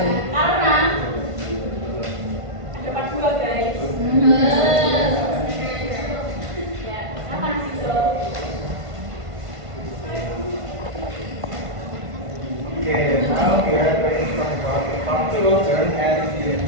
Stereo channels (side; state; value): left; late; 1.5 ms